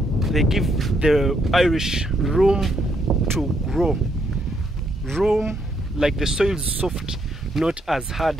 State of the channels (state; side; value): normal; both; correlation 0.74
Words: they give the Irish room to grow. Room, like the soil is soft, not as hard